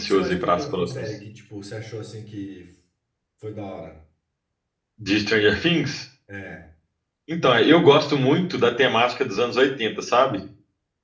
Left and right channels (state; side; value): identical; both; correlation 1.00